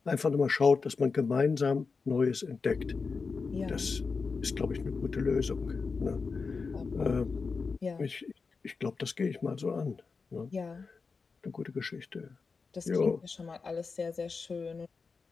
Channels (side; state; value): right; quieter; 4.7 dB